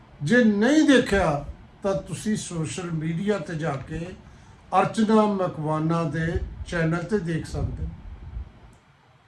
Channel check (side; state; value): both; identical; correlation 1.00